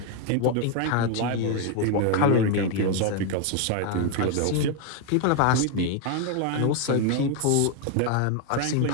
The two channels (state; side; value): different; both; correlation 0.01